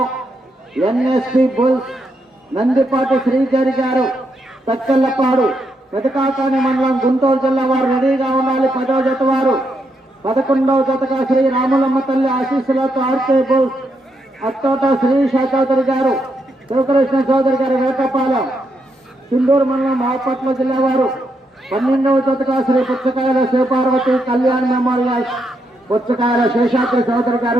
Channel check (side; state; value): both; normal; correlation 0.80